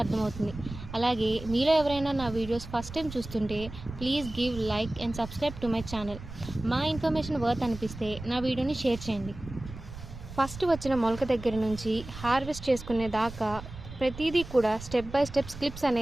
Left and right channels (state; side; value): noise; right; rumble, 13 dB below the sound